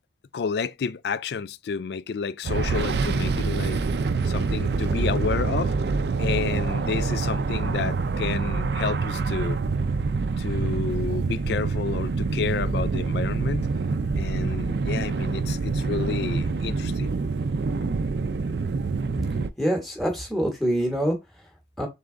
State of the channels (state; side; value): normal; both; correlation 0.60